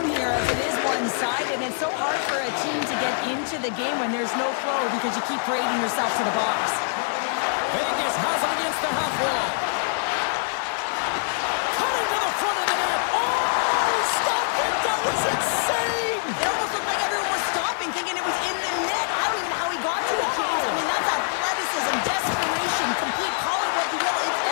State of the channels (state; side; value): silent; right; 62 dB below the other